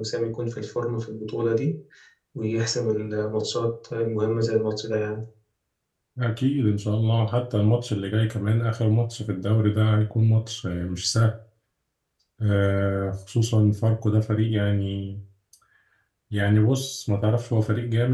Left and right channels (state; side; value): identical; both; correlation 1.00